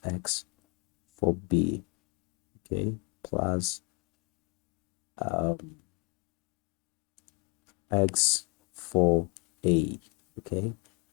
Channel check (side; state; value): right; quieter; 32.0 dB